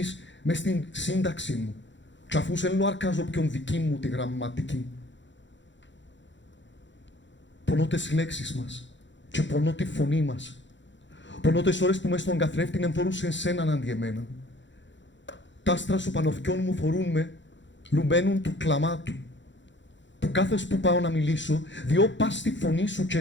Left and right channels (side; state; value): right; late; 0.54 ms